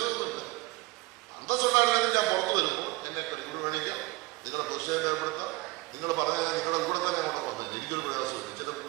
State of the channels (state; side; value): quieter; left; 22.1 dB